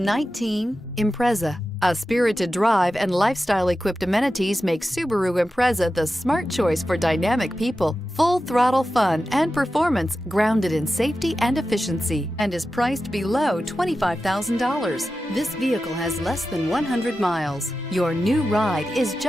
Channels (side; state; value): both; normal; correlation 0.92